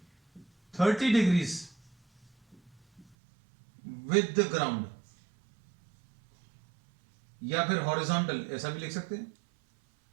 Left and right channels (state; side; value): drops out; left; at 3.1 s